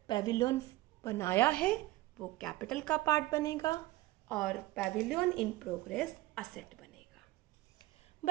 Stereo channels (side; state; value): left; quieter; 18.1 dB